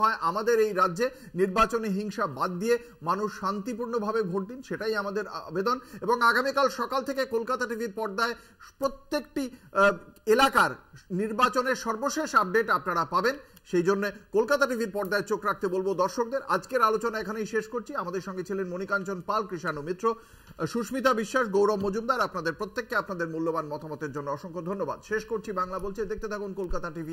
হয় আমাদের এই রাজ্যে, নির্বাচনে হিংসা বাদ দিয়ে মানুষ শান্তিপূর্ণভাবে ভোট দিন, সেটাই আমাদের আবেদন। এবং আগামীকাল সকাল থেকে কলকাতা টিভির পর্দায় প্রত্যেকটি এলাকার নির্বাচনের সর্বশেষ আপডেট আপনারা পাবেন। সেই জন্য কলকাতা টিভির পর্দায় চোখ রাখতে বলবো দর্শকদের। আজকের আলোচনা এখানেই শেষ করছি। আমাদের সঙ্গে ছিলেন মণিকাঞ্চন পাল, কৃষাণু মিত্র, সুস্মিতা বিশ্বাস, গৌরব মজুমদার। আপনাদের প্রত্যেককে আপনাদের মূল্যবান মতামতের জন্য অসংখ্য ধন্যবাদ। শেষ করছি বাংলা বলছে। দেখতে থাকুন কলকাতা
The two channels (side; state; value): both; identical; correlation 1.00